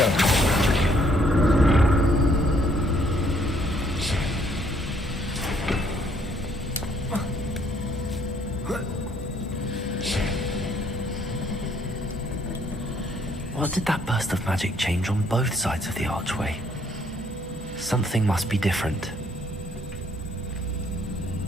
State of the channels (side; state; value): both; normal; correlation 0.66